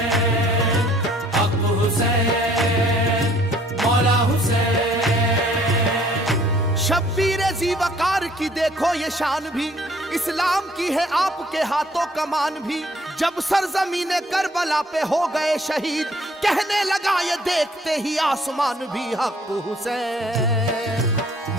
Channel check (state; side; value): normal; both; correlation 0.59